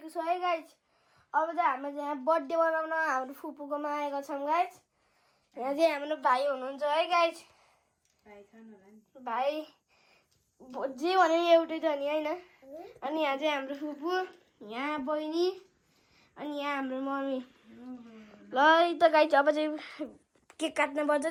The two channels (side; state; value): both; identical; correlation 1.00